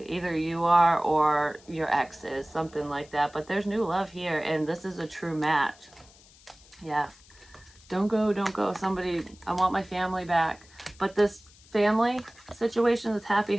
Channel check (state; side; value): noise; left; hiss, 26 dB below the sound